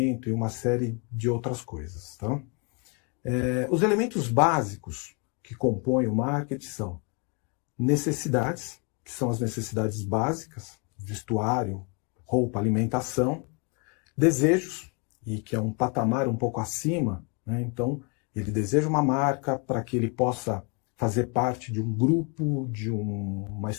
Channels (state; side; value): quieter; right; 34.2 dB